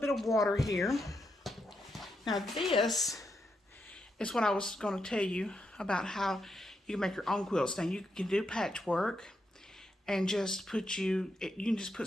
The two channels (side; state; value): both; normal; correlation 0.82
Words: of water here. Now this is what I was going to tell you about how you can make your own quilts. Now you can do patchwork and just you can just put